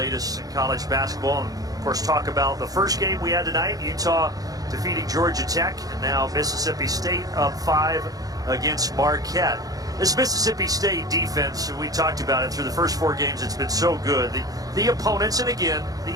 in college basketball, and of course talk about the first game we had tonight, Utah defeating Georgia Tech, and now Mississippi State up 5 against Marquette. This Mississippi State defense, we talked about it through the first 4 games, it's been so good. The opponents, and again,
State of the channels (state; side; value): late; left; 0.18 ms